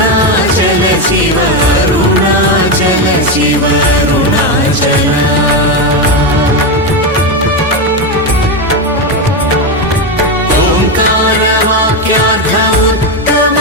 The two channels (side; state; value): both; normal; correlation 0.10